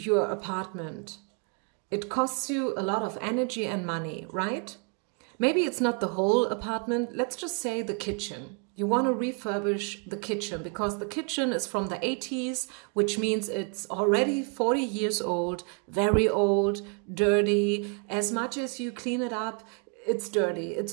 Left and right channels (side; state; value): left; quieter; 36.0 dB